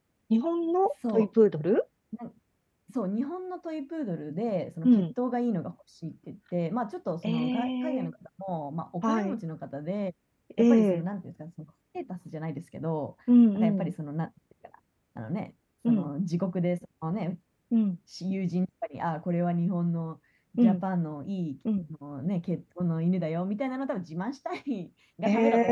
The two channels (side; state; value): both; identical; correlation 1.00